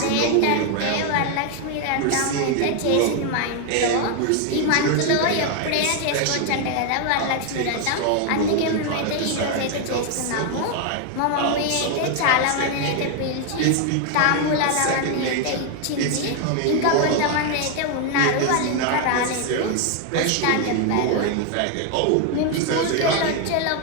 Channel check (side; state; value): both; different; correlation 0.01